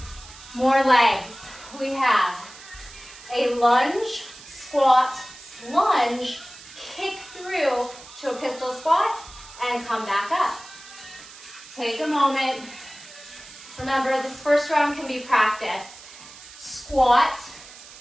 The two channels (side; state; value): right; noise; hiss, 18 dB below the sound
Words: More legs. We have a lunge, squat, lunge, kick through to a pistol squat, and come back up. Take a moment. Remember, this first round can be practice. Squat,